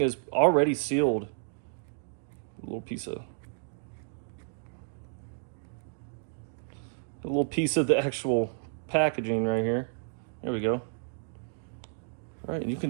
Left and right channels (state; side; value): silent; left; digital silence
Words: is already sealed. A little piece of the actual packaging right here. There we go. All right, and you can